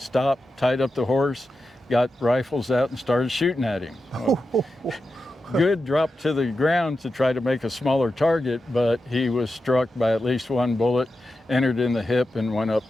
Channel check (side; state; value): both; normal; correlation 0.90